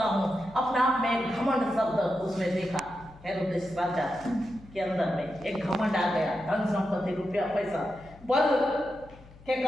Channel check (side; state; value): left; noise; hum, 22 dB below the sound